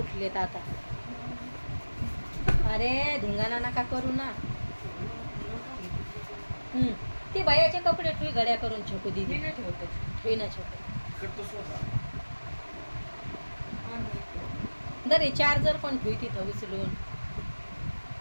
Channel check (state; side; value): inverted; both; correlation -1.00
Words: आता. अरे धिंगाणा नका करू ना. ती भैयाचे कपडे ठुई घड्या करून छकू दिली ठेवते ना छकू. दरे चार्जर पण ठुई तिथं उचलून